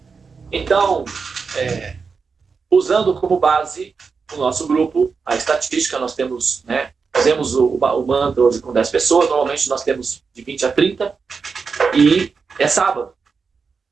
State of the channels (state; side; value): quieter; left; 5.2 dB